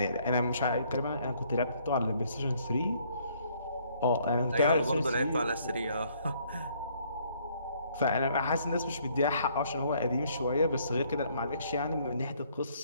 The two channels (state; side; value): inverted; both; correlation -0.65